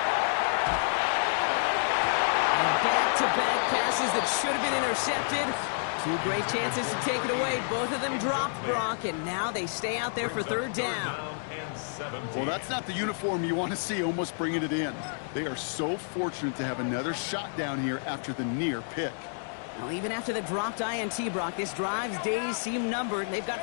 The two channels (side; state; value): right; silent; digital silence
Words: And back-to-back passes that should have been intercepted. Two great chances to take it away. Both of them dropped, Brock, and now they stay out there for third down. And 17. Well, that's not the uniform you want to see almost bringing it in. They are so fortunate to have another shot down here after the near pick. Well, even after the dropped INT, Brock, this drive's days seem numbered. They've